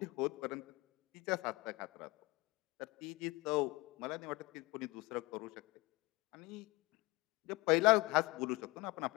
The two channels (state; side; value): quieter; right; 23.1 dB